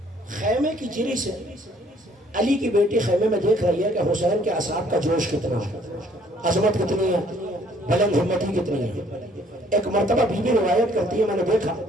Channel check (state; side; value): normal; both; correlation 0.61